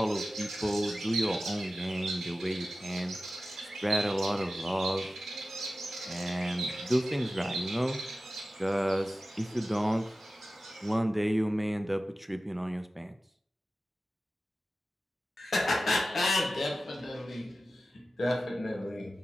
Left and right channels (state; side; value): normal; both; correlation 0.94